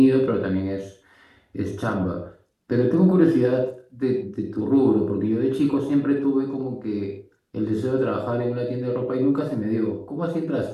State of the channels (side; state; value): both; identical; correlation 1.00